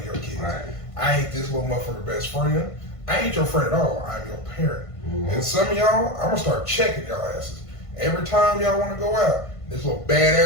your kids. Right. I ain't this little motherfucker best friend. I ain't your friend at all. I'm your parent. Mm-hmm. And some of y'all, I'm gonna start checking y'all asses. Every time y'all wanna go out, this little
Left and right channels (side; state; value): right; late; 1.5 ms